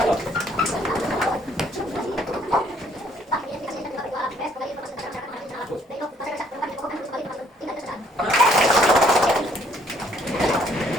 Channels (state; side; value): normal; both; correlation 0.65